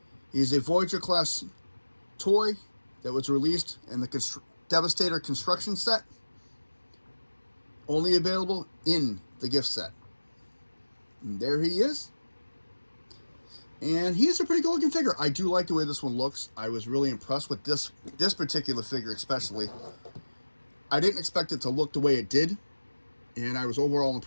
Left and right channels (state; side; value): inverted; both; correlation -1.00